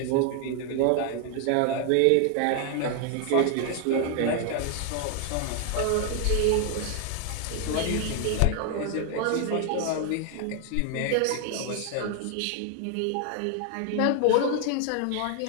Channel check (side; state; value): both; different; correlation 0.00